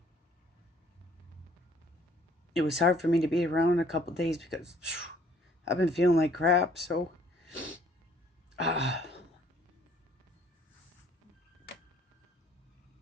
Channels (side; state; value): both; normal; correlation 0.59